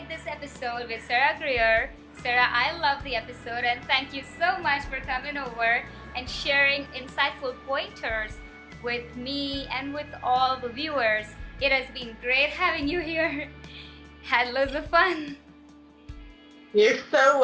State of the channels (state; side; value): identical; both; correlation 1.00